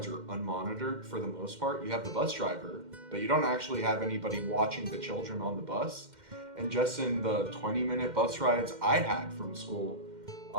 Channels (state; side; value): late; left; 2.1 ms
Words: are unmonitored for the most part. You have the bus driver, but you don't actually have anybody watching the children on the bus. And just in the 20-minute bus rides I had from school,